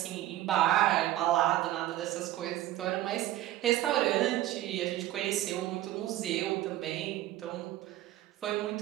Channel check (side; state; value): left; quieter; 14.5 dB